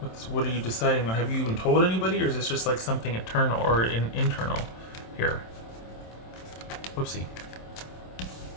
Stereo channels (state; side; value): late; right; 27 ms